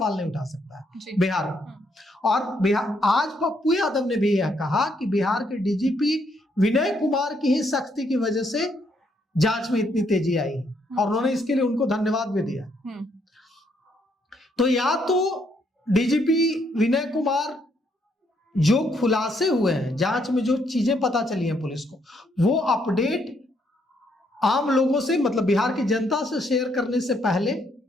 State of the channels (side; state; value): both; normal; correlation 0.72